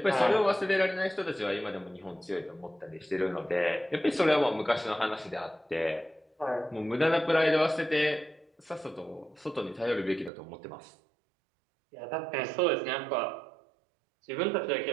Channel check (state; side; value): drops out; left; at 10.3 s